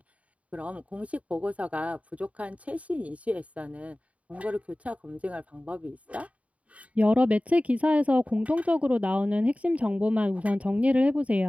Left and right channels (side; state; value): left; late; 0.067 ms